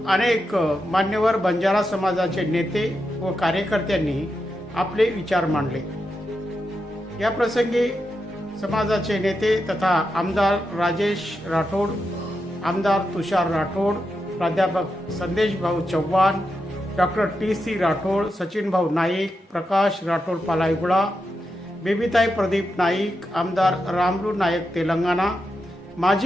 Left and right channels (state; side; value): normal; both; correlation 0.87